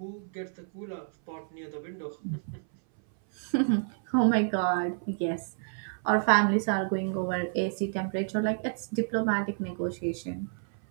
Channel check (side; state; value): left; silent; 57 dB below the other